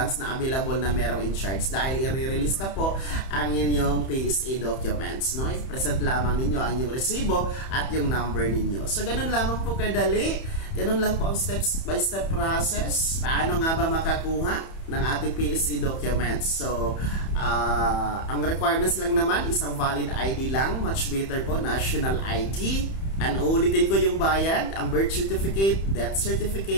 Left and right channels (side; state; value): right; late; 31 ms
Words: na available na merong in charge, dahil i-release na po ang inyong PSA documents, no? I-present lamang ninyo ang inyong resibo at yung number ninyo. So ganun lamang po kadali, ganun lang po ang steps by step process. Paano nga ba makakuha ng ating PSA documents? So ang requirements lang naman, isang valid ID lang, much better po national ID. And ulitin ko yung bayad, ang birth certificate, death